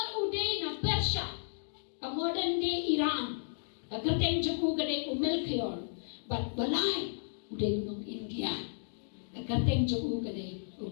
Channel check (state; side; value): silent; right; digital silence